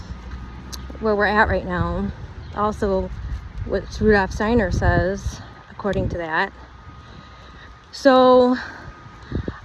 where we're at right now. Also, what Rudolf Steiner says, according to that. So,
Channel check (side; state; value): both; identical; correlation 1.00